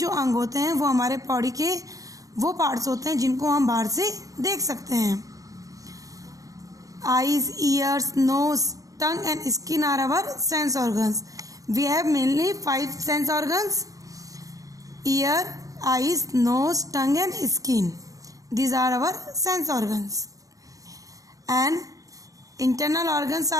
अंग होते हैं, वो हमारे बॉडी के वो पार्ट्स होते हैं जिनको हम बाहर से देख सकते हैं। Eyes, ears, nose, tongue and skin are our sense organs. We have mainly 5 sense organs: ear, eyes, nose, tongue and skin. These are our sense organs. And internal organs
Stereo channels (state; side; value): late; left; 0.17 ms